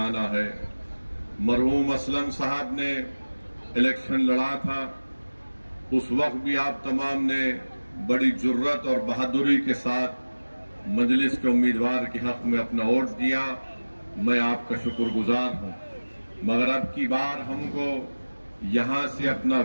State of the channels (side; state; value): both; inverted; correlation -1.00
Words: है। मरहूम असलम साहब ने इलेक्शन लड़ा था, उस वक्त भी आप तमाम ने बड़ी जुर्रत और बहादुरी के साथ मजलिस के उम्मीदवार के हक में अपना वोट दिया। मैं आपका शुक्रगुजार हूं। मगर अब की बार हमको यहां से अपना